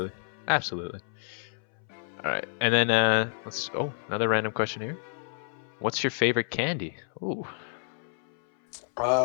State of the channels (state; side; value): silent; right; 58 dB below the other